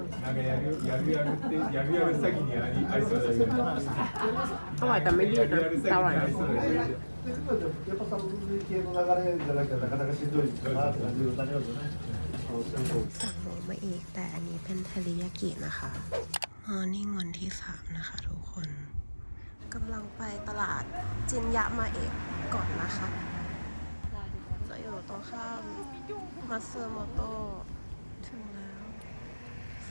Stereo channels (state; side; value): inverted; both; correlation -1.00